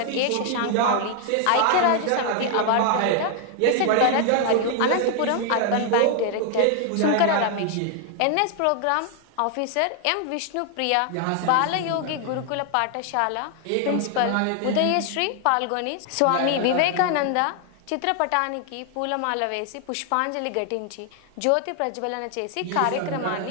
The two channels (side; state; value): both; different; correlation 0.00